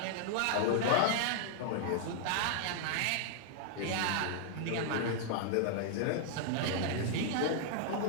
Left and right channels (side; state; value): both; different; correlation -0.01